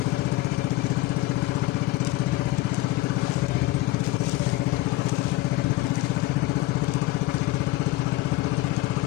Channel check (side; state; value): right; quieter; 17.6 dB